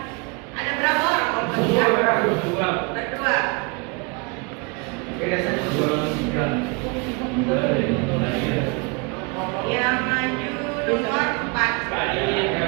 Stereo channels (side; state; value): left; quieter; 31.9 dB